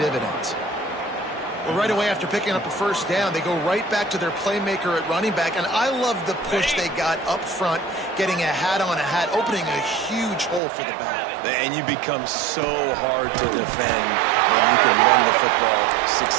Well, right away after picking up a first down, they go right back to their playmaker at running back. And I love the push they got up front, getting a hat on a hat, opening a huge hole for the back. And you become so hard to defend when you can run the football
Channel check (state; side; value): drops out; left; at 10.6 s